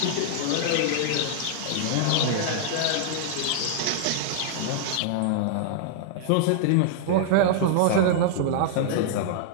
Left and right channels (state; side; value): different; both; correlation -0.01